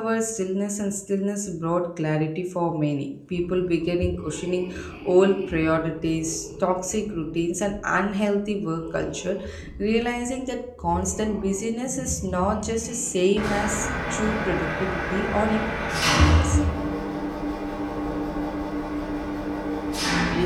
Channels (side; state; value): both; identical; correlation 1.00